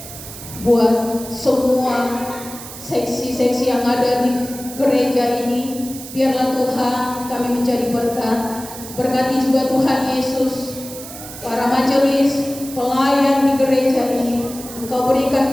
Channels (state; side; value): noise; right; hiss, 13 dB below the sound